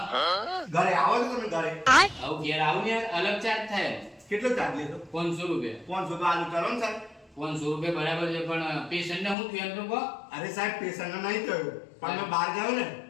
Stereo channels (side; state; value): right; drops out; at 9.3 s